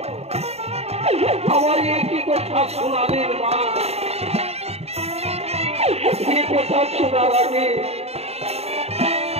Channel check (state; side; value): late; left; 0.30 ms